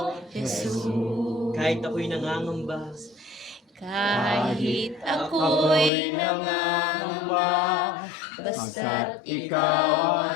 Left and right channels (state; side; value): drops out; right; at 5.9 s